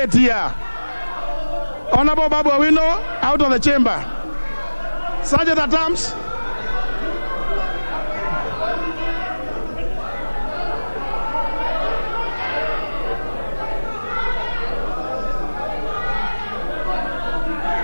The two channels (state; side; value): inverted; both; correlation -1.00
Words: here. Honorable Babu Awino, out of the chamber. Sergeant at arms.